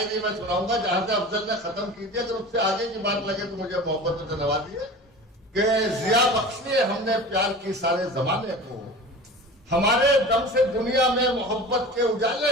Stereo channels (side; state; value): both; normal; correlation 0.36